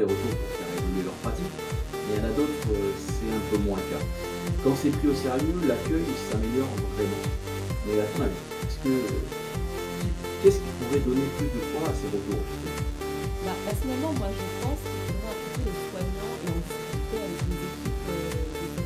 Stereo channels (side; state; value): both; identical; correlation 1.00